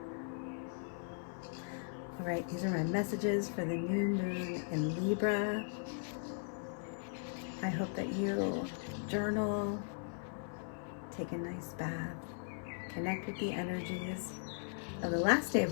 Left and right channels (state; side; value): silent; right; 52 dB below the other